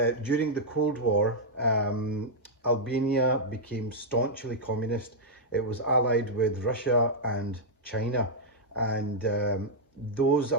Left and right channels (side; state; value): both; normal; correlation -0.06